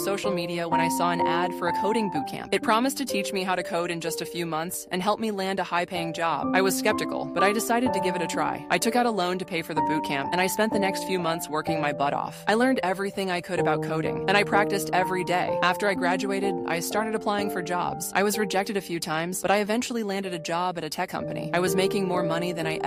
media when I saw an ad for a coding bootcamp. It promised to teach me how to code in just a few months and help me land a high-paying job. I was skeptical, but I decided to give it a try. I took out a loan to pay for the bootcamp, and I spent the next few months working my butt off. I learned everything I could about coding, and I practiced every day. After I graduated, I started applying for jobs. I was rejected a few times, but I eventually landed a job at a tech company. I was making more money than I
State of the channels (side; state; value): both; identical; correlation 1.00